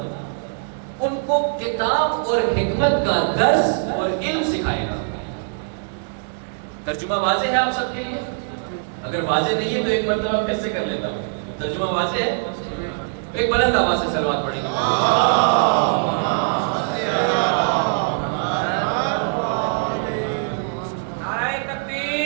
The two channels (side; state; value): left; silent; digital silence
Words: ان کو کتاب اور حکمت کا درس اور علم سکھائے گا۔ ترجمہ واضح ہے آپ سب کے لیے؟ اگر واضح نہیں ہے تو ایک مرتبہ پھر سے کر لیتا ہوں۔ ترجمہ واضح ہے؟ ایک بلند آواز سے صلوات پڑھیں گے۔ نعرہ